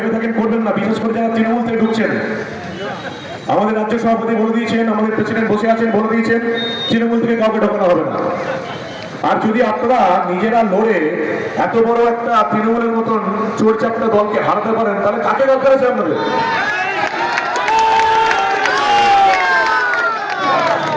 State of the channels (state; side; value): identical; both; correlation 1.00